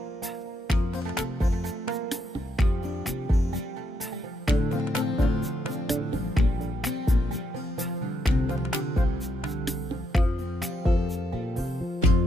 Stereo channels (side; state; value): both; normal; correlation 0.77